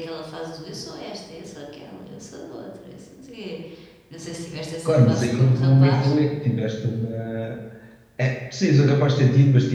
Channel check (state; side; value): identical; both; correlation 1.00